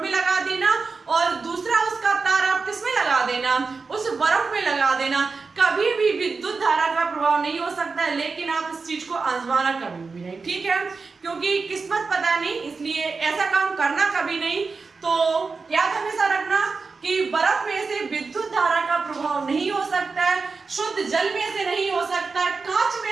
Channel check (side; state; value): left; quieter; 4.5 dB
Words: लगा देना और दूसरा उसका तार आप किसमें लगा देना? उस बर्फ में लगा देना, कभी भी विद्युत धारा का प्रभाव नहीं हो सकता है। लेकिन आप इस चीज को आजमाना कभी भी नहीं, ठीक है, क्योंकि किस्मत पता नहीं, इसलिए ऐसा काम करना कभी नहीं। तो याद हमेशा रखना कि बर्फ में से विद्युत धारा का प्रभाव नहीं हो सकता है, शुद्ध जल में से नहीं हो सकता है, कांच